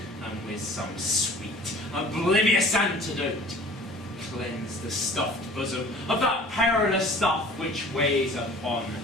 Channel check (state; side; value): normal; both; correlation 0.47